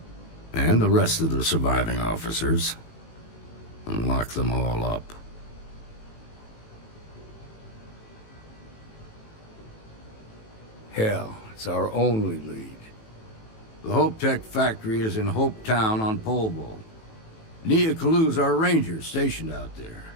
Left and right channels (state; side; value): late; right; 18 ms